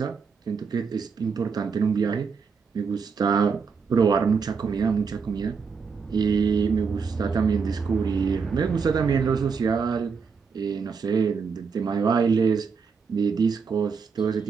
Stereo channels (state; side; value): quieter; left; 5.6 dB